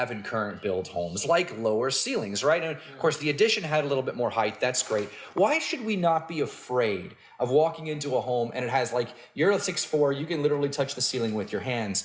in current build homes, like lower ceilings, right? And of course, the addition had a little bit more height. That's great. Why should we not be afraid of walking into a home and it has you're a 6'4", you can literally touch the ceiling with your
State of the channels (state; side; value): identical; both; correlation 1.00